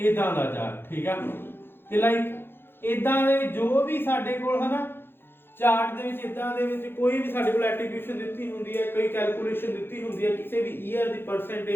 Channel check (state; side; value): late; right; 0.10 ms